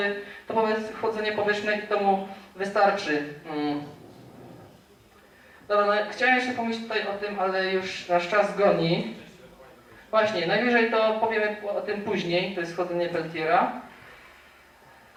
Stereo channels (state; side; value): identical; both; correlation 1.00